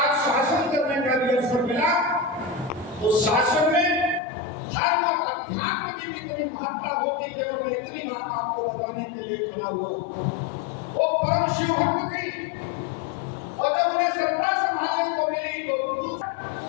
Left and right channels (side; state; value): right; drops out; at 4.2 s